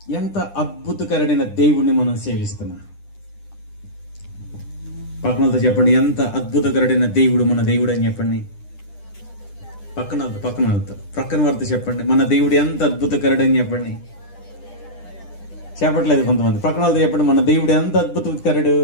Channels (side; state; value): right; late; 10 ms